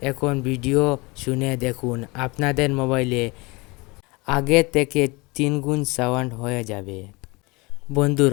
এখন ভিডিও শুনে দেখুন, আপনাদের মোবাইলে আগে থেকে 3 গুণ সাউন্ড হয়ে যাবে।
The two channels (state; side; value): quieter; right; 25.5 dB